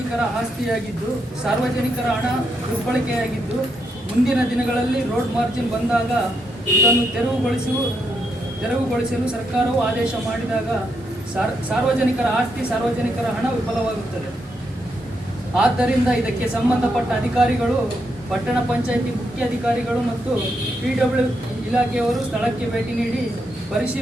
ಆಸ್ತಿಯಾಗಿದ್ದು, ಸಾರ್ವಜನಿಕರ ಹಣ ದುರ್ಬಳಕೆಯಾಗಿದ್ದು, ಮುಂದಿನ ದಿನಗಳಲ್ಲಿ ರೋಡ್ ಮಾರ್ಜಿನ್ ಬಂದಾಗ ಇದನ್ನು ತೆರವುಗೊಳಿಸಲು ಸರ್ಕಾರವು ಆದೇಶ ಮಾಡಿದಾಗ ಸಾರ್ವಜನಿಕರ ಆಸ್ತಿ, ಸಾರ್ವಜನಿಕರ ಹಣ ವಿಫಲವಾಗುತ್ತದೆ. ಆದ್ದರಿಂದ ಇದಕ್ಕೆ ಸಂಬಂಧಪಟ್ಟ ಅಧಿಕಾರಿಗಳು, ಪಟ್ಟಣ ಪಂಚಾಯಿತಿ ಮುಖ್ಯಾಧಿಕಾರಿಗಳು ಮತ್ತು PW ಇಲಾಖೆಯವರು ಸ್ಥಳಕ್ಕೆ ಭೇಟಿ ನೀಡಿ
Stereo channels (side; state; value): both; normal; correlation 0.80